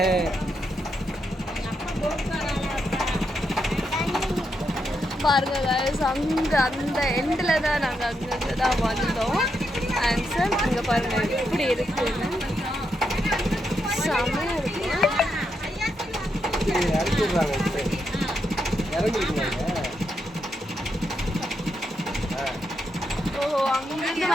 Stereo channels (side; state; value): both; normal; correlation 0.82